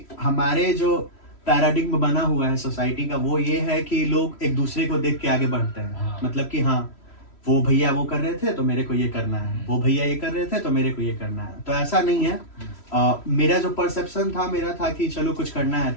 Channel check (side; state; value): right; late; 3.1 ms